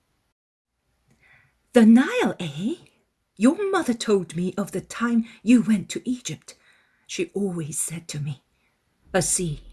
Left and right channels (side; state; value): both; identical; correlation 1.00